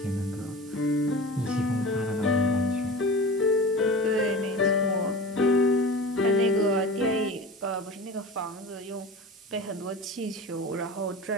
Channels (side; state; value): both; normal; correlation 0.33